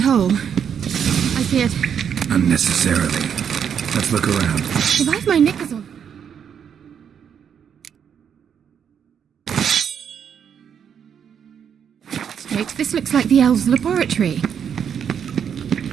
whole? I feared. Unnecessarily. Let's look around. If I've my knickers on. Straight, this looks like the elves' laboratory.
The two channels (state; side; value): quieter; left; 8.0 dB